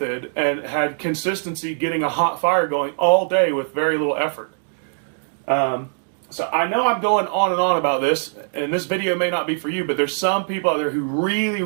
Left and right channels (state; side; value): silent; left; digital silence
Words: and had consistency getting a hot fire going all day with very little effort. So I know I'm going on and on about this, and this video may not be for you, but there's some people out there who really,